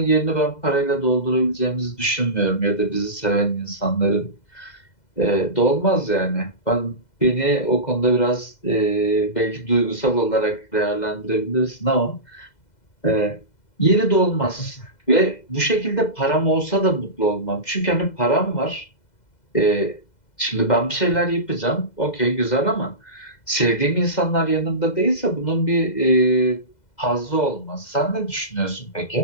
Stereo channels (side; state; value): right; late; 2.0 ms